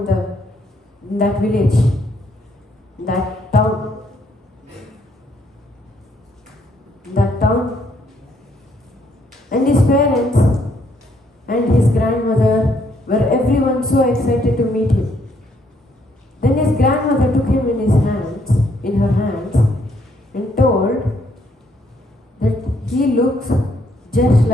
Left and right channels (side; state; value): both; normal; correlation 0.70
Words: in that village, that town. And his parents and his grandmother were everyone so excited to meet him. Then his grandmother took him in her hands, and told that he looks just